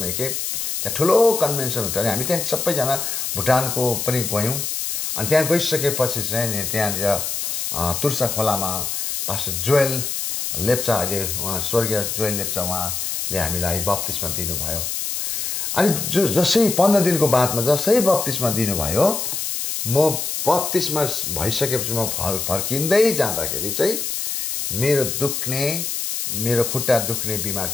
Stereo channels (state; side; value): noise; left; hiss, 2 dB below the sound